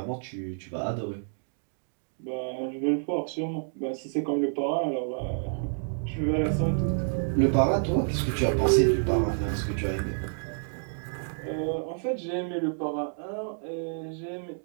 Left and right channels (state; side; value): silent; left; digital silence